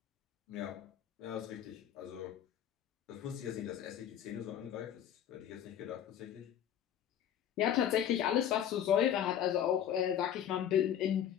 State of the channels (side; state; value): right; quieter; 10.0 dB